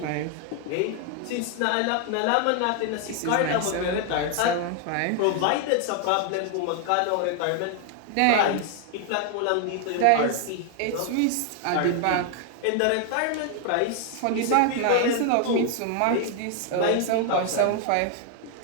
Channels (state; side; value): different; both; correlation 0.00